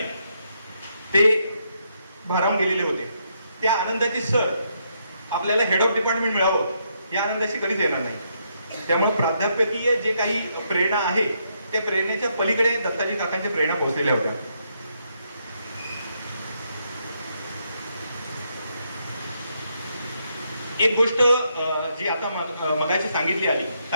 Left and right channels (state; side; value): inverted; both; correlation -0.77